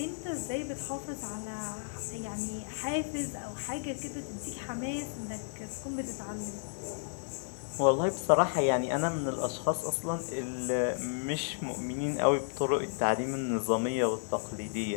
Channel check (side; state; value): right; silent; digital silence